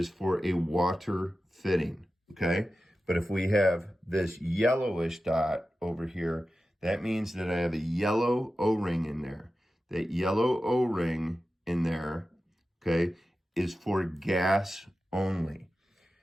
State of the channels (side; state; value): both; normal; correlation 0.93